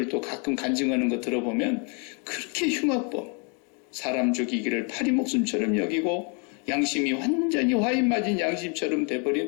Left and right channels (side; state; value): right; quieter; 36.4 dB